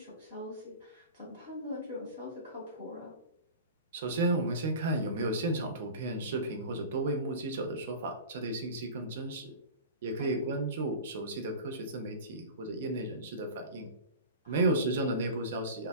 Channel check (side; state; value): both; inverted; correlation -0.34